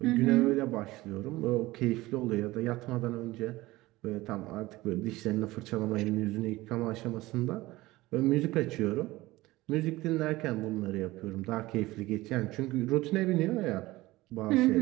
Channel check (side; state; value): left; quieter; 18.9 dB